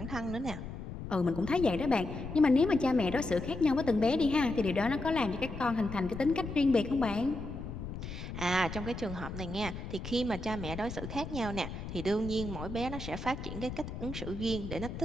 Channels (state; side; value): noise; left; rumble, 8 dB below the sound